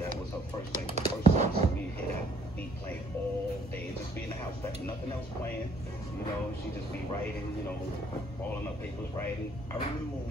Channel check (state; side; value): normal; both; correlation 0.63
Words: was her first thing. The first song to me, hear that beat playing all day. Just be in the house, nothing else playing. She just be writing, balling up papers, writing. I remember